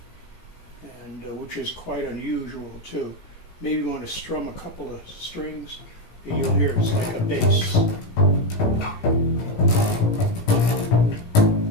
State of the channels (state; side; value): late; right; 17 ms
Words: and which is quite unusual too. Maybe you want to strum a couple of strings, and you'll hear it's like a bass.